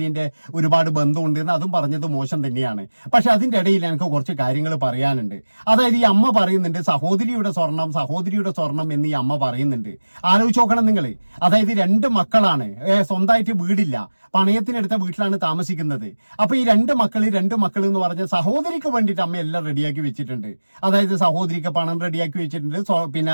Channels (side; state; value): both; inverted; correlation -1.00